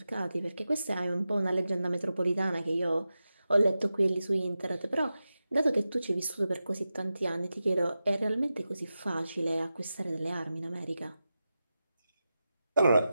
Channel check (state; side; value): inverted; both; correlation -0.92